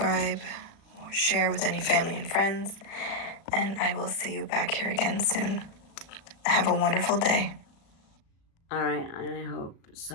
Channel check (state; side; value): late; right; 36 ms